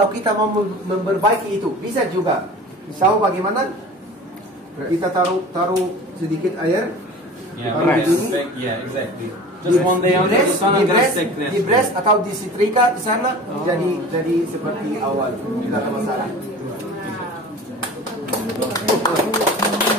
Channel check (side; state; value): both; normal; correlation 0.39